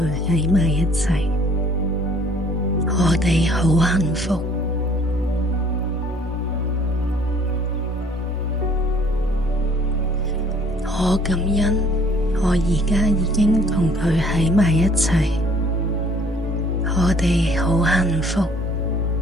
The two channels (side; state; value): both; normal; correlation 0.57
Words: 喺埋一齊，我哋好幸福。我感恩我而家已經同佢喺埋一齊，我哋好幸福。